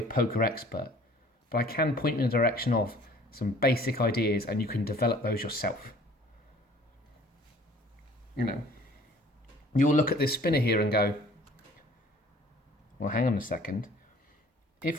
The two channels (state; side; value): normal; both; correlation 0.52